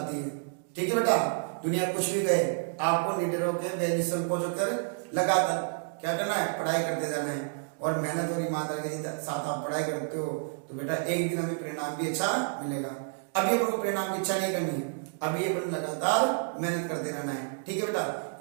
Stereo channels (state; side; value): silent; left; digital silence